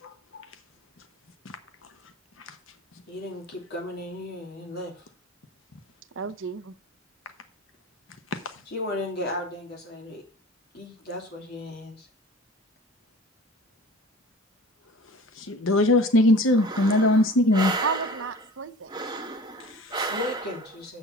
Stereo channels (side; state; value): both; normal; correlation 0.41